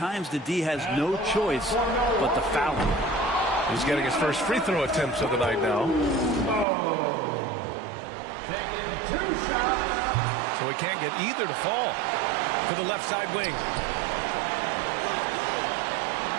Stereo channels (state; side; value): drops out; left; at 6.7 s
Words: the D has no choice but to foul him. He's getting his first free throw attempts of the night now. Taking 2 shots. So he can't get either to fall. To the left side wing.